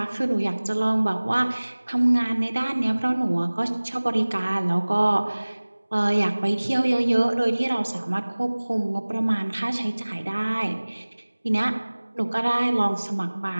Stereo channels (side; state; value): both; inverted; correlation -1.00